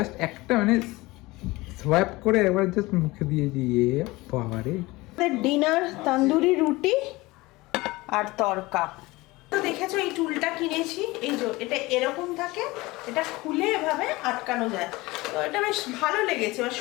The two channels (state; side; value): quieter; right; 21.2 dB